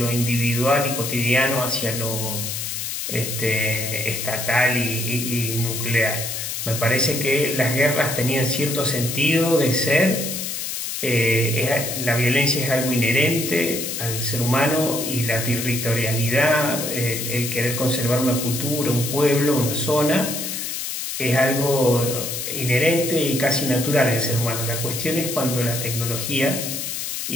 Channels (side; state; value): left; noise; hiss, 4 dB below the sound